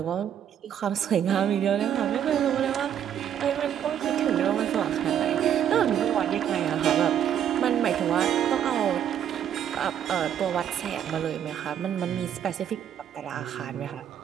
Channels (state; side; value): quieter; left; 9.6 dB